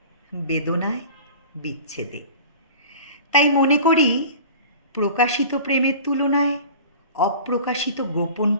বেদনায়, বিচ্ছেদে। তাই মনে করি প্রকাশিত প্রেমের তুলনায় অপ্রকাশিত গোপন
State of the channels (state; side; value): inverted; both; correlation -0.40